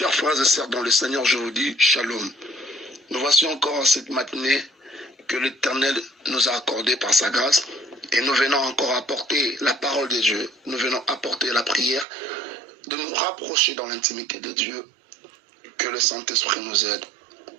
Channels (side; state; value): left; drops out; at 12.1 s